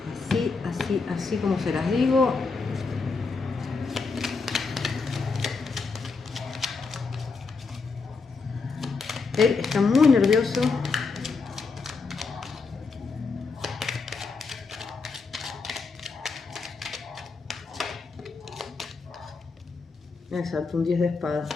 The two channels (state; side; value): quieter; right; 4.4 dB